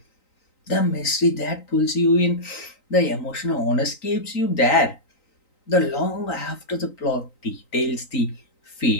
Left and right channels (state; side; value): late; right; 3.9 ms